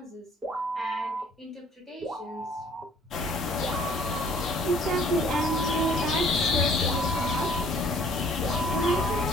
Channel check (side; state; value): both; normal; correlation 0.57